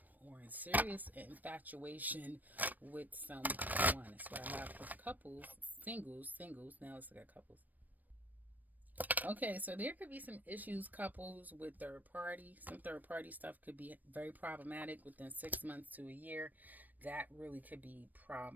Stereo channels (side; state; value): left; late; 0.085 ms